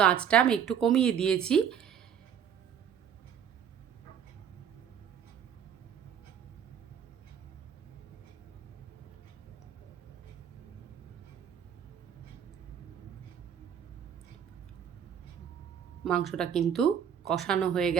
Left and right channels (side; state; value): left; quieter; 8.5 dB